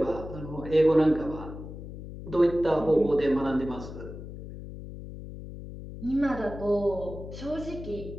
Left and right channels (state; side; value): noise; left; hum, 11 dB below the sound